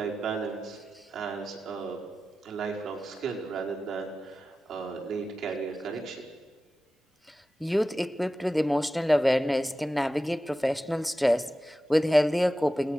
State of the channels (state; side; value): normal; both; correlation 0.94